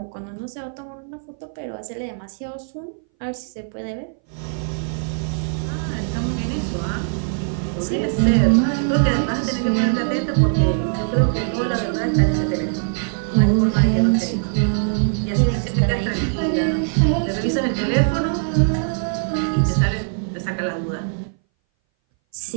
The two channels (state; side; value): silent; left; 60 dB below the other